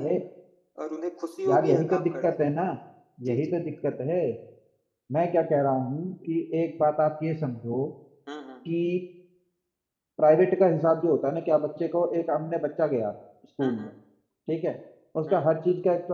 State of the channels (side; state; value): both; identical; correlation 1.00